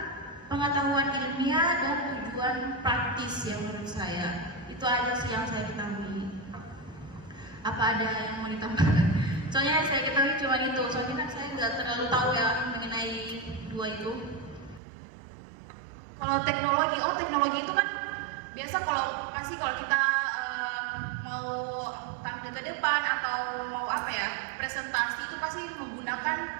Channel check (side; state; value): left; drops out; at 14.8 s